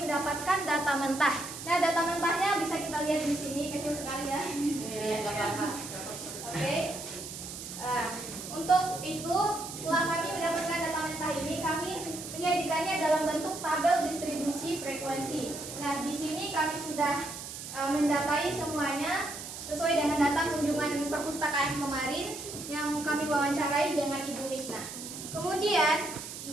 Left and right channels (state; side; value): noise; right; hiss, 10 dB below the sound